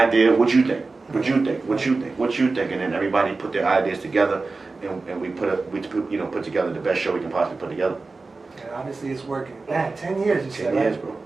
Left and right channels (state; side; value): quieter; left; 3.8 dB